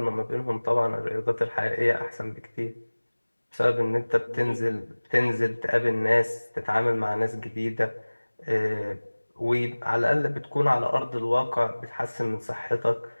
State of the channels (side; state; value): both; inverted; correlation -1.00